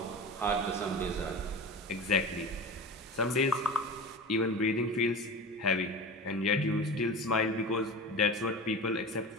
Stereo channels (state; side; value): normal; both; correlation 0.31